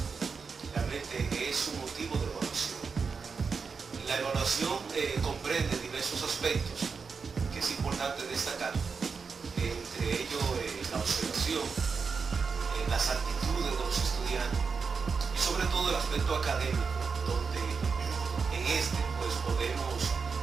realmente es un motivo de evaluación. La evaluación comprende diversos aspectos que es importante destacar, entre ellos la observación, las actitudes de los estudiantes y sobre todo el aspecto académico, donde en este pues podemos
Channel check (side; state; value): left; quieter; 5.3 dB